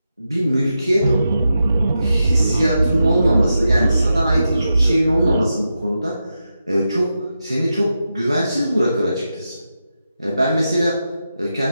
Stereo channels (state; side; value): inverted; both; correlation -0.88